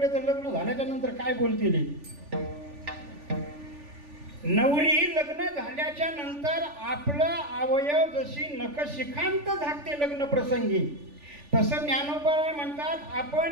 तर लग्न झाल्याच्या नंतर काय बोलतील? नवरी लग्न झाल्याच्या नंतर आपलं अवयव जशी नखशिखांत झाकते लग्न प्रसंगी, तसं ज्ञानोबराय म्हणतात,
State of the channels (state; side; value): late; left; 3.4 ms